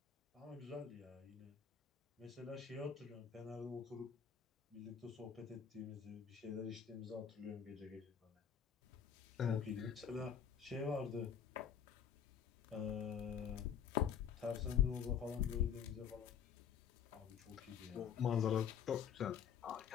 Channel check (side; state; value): right; quieter; 7.9 dB